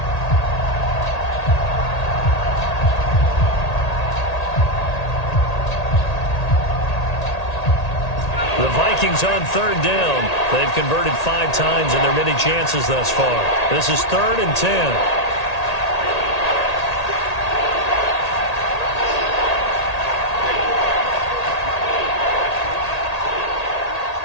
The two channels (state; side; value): late; right; 1.8 ms